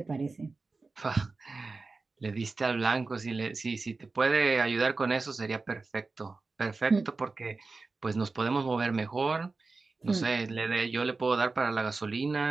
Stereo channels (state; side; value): quieter; left; 3.8 dB